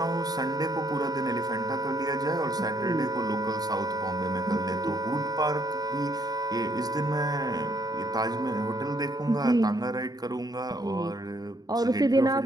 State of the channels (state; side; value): late; left; 0.19 ms